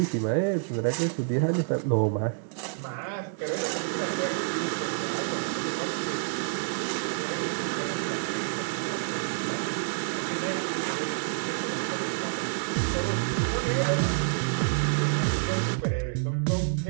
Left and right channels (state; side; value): silent; left; 59 dB below the other